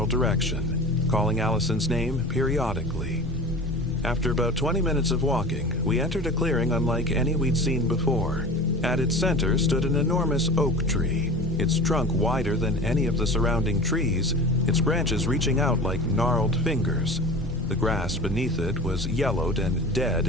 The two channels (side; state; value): both; normal; correlation 0.35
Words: direction, calling Allison's name periodically. After about 20 minutes of walking, we entered a clearing unlike any we'd seen before. At its center stood an enormous oak tree, its trunk wider than any of the surrounding trees, its branches reaching out like gnarled fingers. The grass beneath it was yellowed and dead